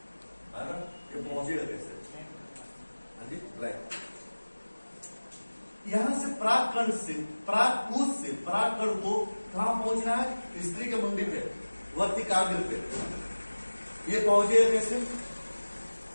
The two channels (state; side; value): inverted; both; correlation -1.00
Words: है ना, ये पहुंचेगा कैसे? हाँ जी, राइट। यहां से परागकण से, परागकूज से परागकण को कहां पहुंचना है? स्त्री के मुंडी पे, वर्तिकाग्र पे। ये पहुंचेगा कैसे?